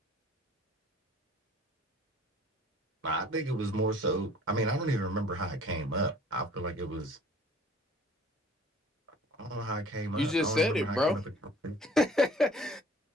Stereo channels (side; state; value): both; normal; correlation 0.51